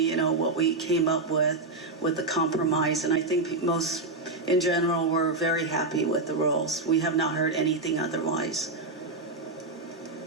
know, what we came up with the compromise. And I think most, in general, were very happy with the rules. We have not heard anything otherwise.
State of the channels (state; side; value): quieter; left; 3.2 dB